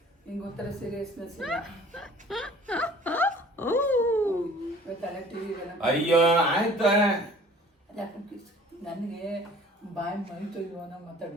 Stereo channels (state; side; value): normal; both; correlation 0.50